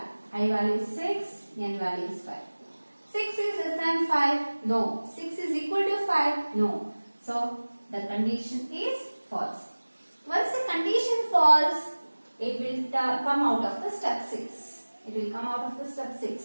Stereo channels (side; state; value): both; inverted; correlation -1.00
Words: I value is 6, n value is 5. 6 is less than 5? No. 6 is equal to 5? No. So, the condition is false. Once the condition false, it will come out of the step 6. It will come out of the step